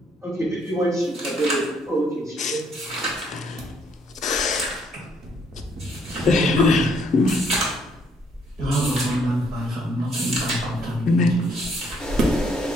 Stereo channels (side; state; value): both; normal; correlation 0.68